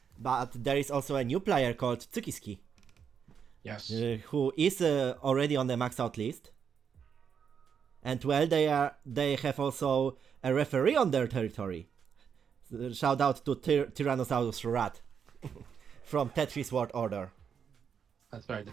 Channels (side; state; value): left; quieter; 7.2 dB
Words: But there is also a new player called Tsukiski. Yes. Who is already on the max out list. And well, they have also a referee on their territory. Shout out to Tyrannosaurus Rat from Tetris World Order. That's right, the